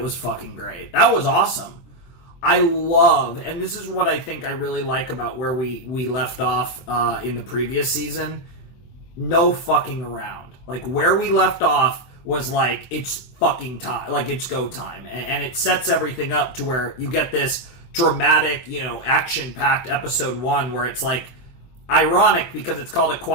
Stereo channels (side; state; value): right; late; 24 ms